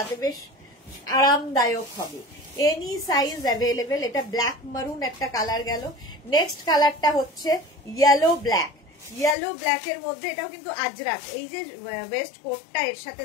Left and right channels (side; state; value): right; drops out; at 9.3 s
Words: বেশ আরামদায়ক হবে। Any size available. এটা ব্ল্যাক মারুন একটা কালার গেল। নেক্সট কালারটা হচ্ছে ইয়েলো ব্ল্যাক। ইয়েলো ব্ল্যাকের মধ্যে এটাও কিন্তু আজরাক, এই যে ওয়েস্ট কোটটা এর সাথে